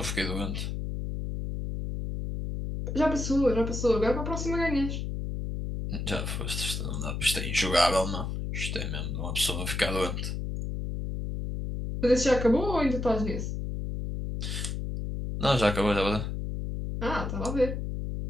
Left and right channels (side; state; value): left; noise; hum, 4 dB below the sound